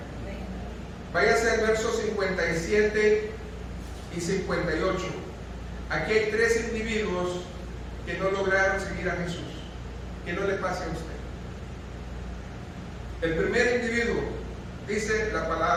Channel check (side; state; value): both; identical; correlation 1.00